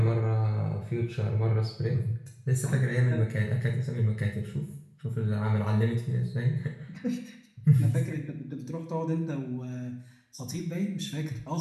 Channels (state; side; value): identical; both; correlation 1.00